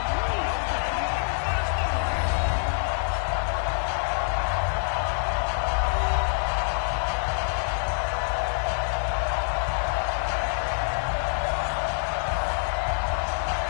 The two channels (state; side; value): silent; right; 61 dB below the other